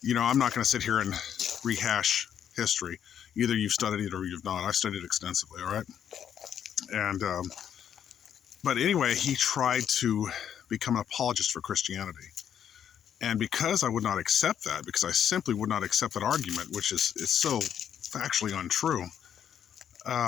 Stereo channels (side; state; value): right; quieter; 9.1 dB